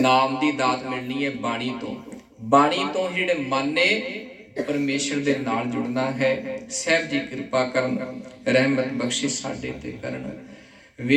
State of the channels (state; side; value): identical; both; correlation 1.00